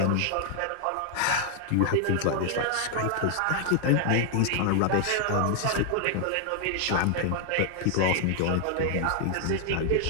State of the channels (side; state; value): both; different; correlation 0.00